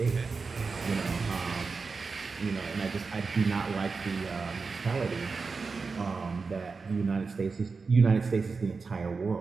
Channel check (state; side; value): quieter; left; 4.6 dB